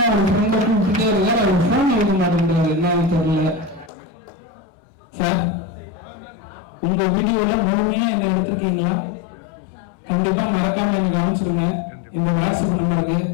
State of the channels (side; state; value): right; drops out; at 3.9 s